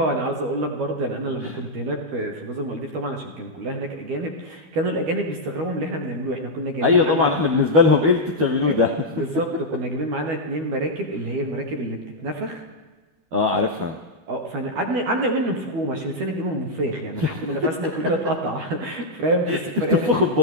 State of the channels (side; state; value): left; late; 12 ms